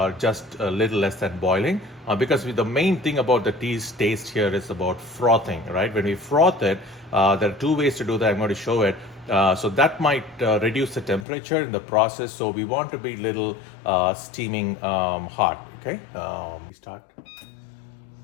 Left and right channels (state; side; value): drops out; right; at 11.2 s